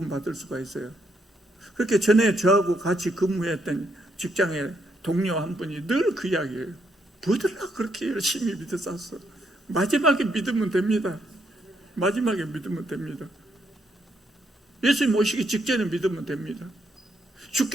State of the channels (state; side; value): normal; both; correlation 0.75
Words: 수가 있어요. 그렇게 전에 저하고 같이 근무했던 직장의 동료 한 분이 늘 그 이야기예요. 뭐들라 그렇게 열심히 믿었어. 마지막에 믿으면 됩니다. 마지막에 믿으면 됩니다. 예수님 오시기 직전에 믿으면 됩니다.